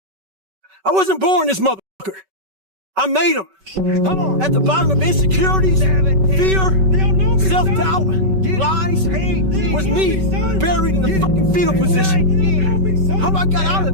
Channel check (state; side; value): late; left; 5.3 ms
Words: I wasn't born this motherfucker. I made him. At the bottom of insecurities, fear, self-doubt, lies, was me buried in the fucking fetal position. How I got out